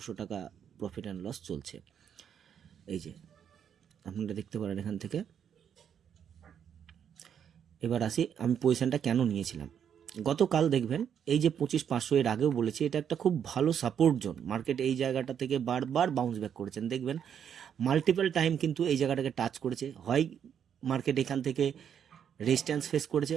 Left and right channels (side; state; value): left; quieter; 8.4 dB